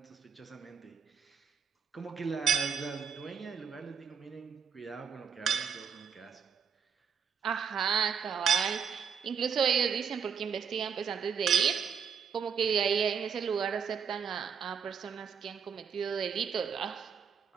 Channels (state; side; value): quieter; left; 7.0 dB